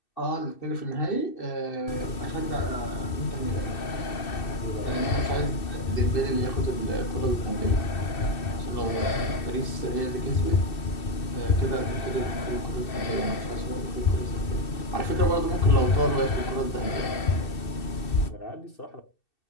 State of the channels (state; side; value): late; right; 2.6 ms